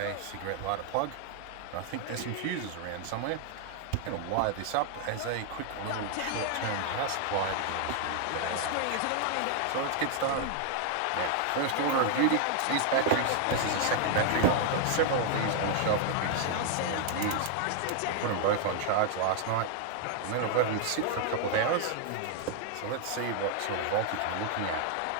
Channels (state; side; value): different; both; correlation 0.00